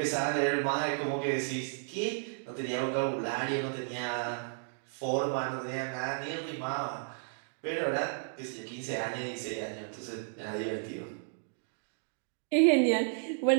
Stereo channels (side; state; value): left; silent; digital silence